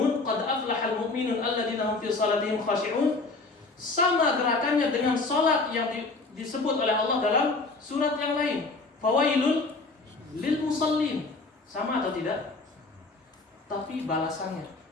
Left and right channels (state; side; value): quieter; right; 3.6 dB